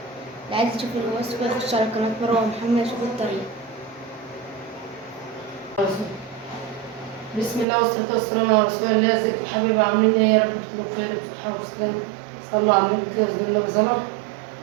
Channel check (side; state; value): left; drops out; at 7.7 s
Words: عايز يشوف الوصفة يخش على قناة مروة محمد يشوف الطريقة. بسم الله والصلاة والسلام على رسول الله. ازيكم يا حبايبي، عاملين ايه؟ يا رب تكونوا بخير وبصحة وسلامة. صلوا على النبي كده بسم الله وسلام.